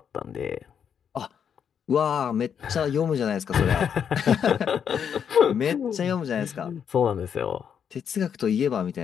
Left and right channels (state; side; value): quieter; right; 7.8 dB